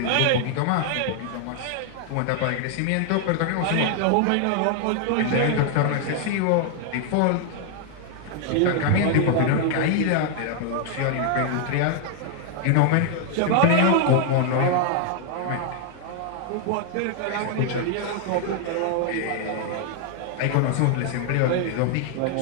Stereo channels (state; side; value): different; both; correlation 0.00